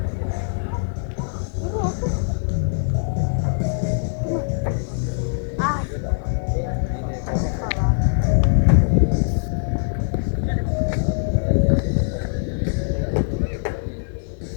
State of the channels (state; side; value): silent; right; 61 dB below the other